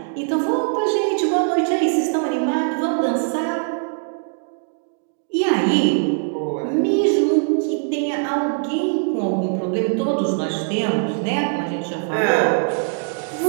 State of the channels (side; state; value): left; silent; digital silence